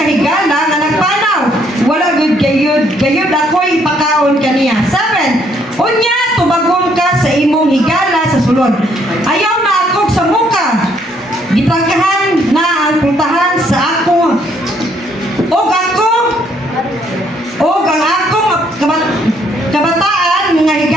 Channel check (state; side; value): normal; both; correlation 0.68